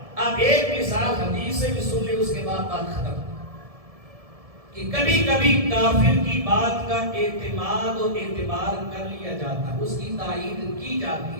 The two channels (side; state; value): left; late; 1.7 ms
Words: اب ایک مثال حدیث سے بھی سن لے، اس کے بعد بات ختم، کہ کبھی کبھی کافر کی بات کا اعتماد اور اعتبار کر لیا جاتا ہے، اس کی تائید کی